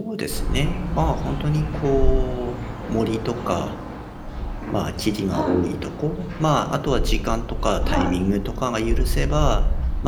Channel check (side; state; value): both; identical; correlation 1.00